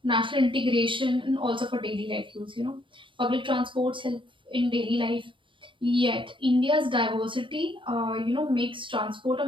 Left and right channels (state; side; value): late; left; 0.24 ms